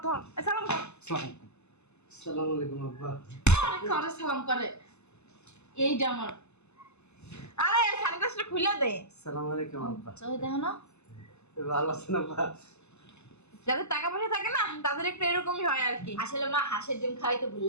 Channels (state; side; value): late; right; 0.81 ms